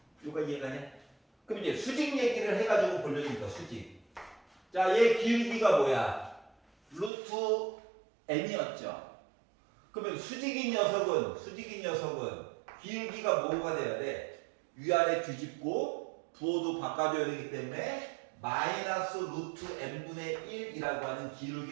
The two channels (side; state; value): left; drops out; at 7.1 s